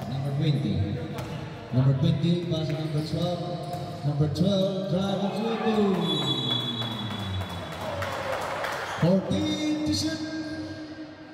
number 20. Number 20 pass to number 12. Number 12 drive and dribble. 14 to shoot.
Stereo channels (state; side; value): identical; both; correlation 1.00